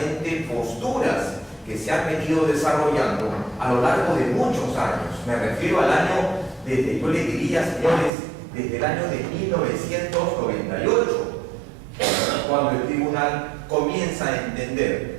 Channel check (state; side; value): drops out; left; at 8.1 s